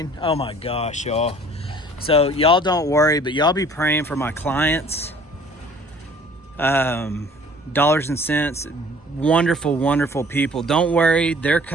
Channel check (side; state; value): both; normal; correlation 0.52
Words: Oh my gosh, y'all. So y'all don't worry, but y'all be praying for my clients. Dollars and cents, wonderful people. Don't worry, they're